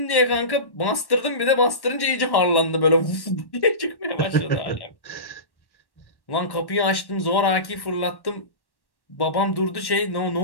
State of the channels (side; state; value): right; late; 1.1 ms